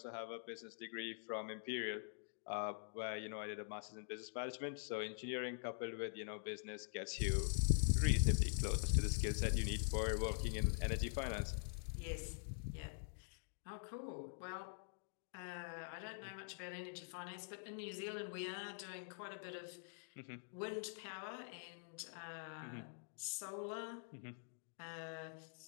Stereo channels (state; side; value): silent; right; digital silence